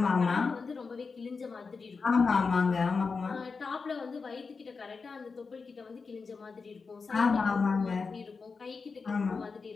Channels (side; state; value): right; quieter; 4.7 dB